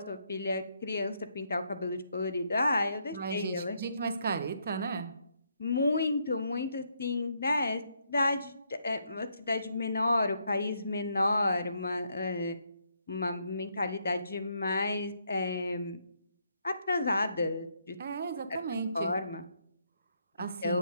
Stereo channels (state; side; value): inverted; both; correlation -0.75